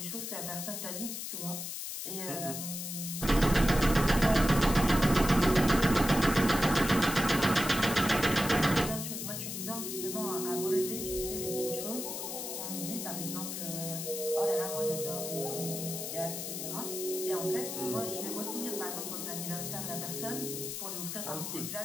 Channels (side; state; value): left; noise; hiss, 6 dB below the sound